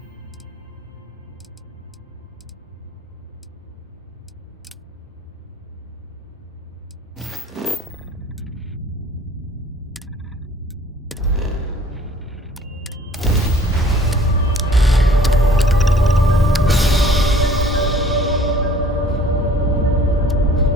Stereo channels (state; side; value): normal; both; correlation 0.53